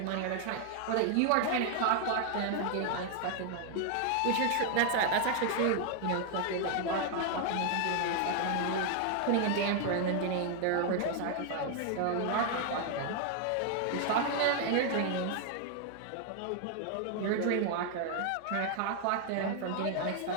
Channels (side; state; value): both; different; correlation 0.00